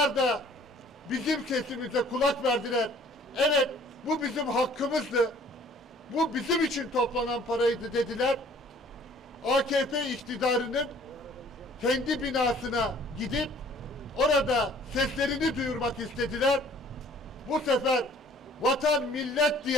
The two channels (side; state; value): both; normal; correlation 0.54